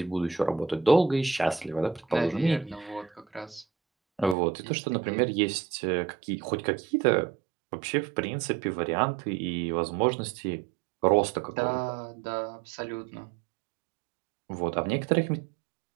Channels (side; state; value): left; drops out; at 4.4 s